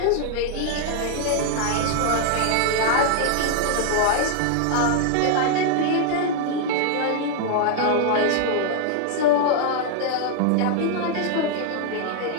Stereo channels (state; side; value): different; both; correlation 0.00